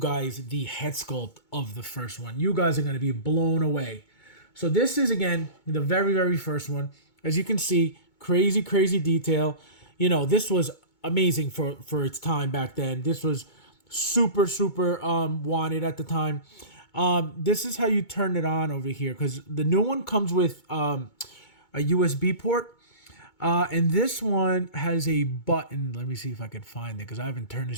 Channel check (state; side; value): late; right; 2.2 ms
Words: the head sculpt of the first one. You guys are going to be blown away. So this is, again, the very, very first one. As you can see, crazy, crazy detail. This was amazing for its time back then. This was super, super wanted at the time. This is how you turn it on over here, because the new one comes with a USB port. And this one has a button. Let me see if I can find it, because I haven't turned